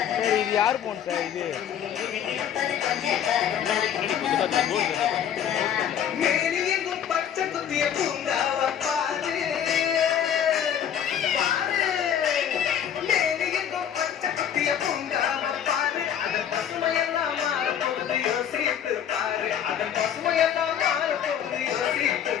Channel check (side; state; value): right; quieter; 9.1 dB